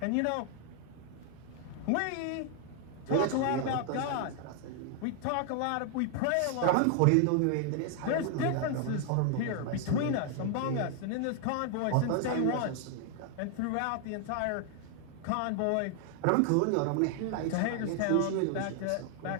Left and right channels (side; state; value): both; different; correlation 0.00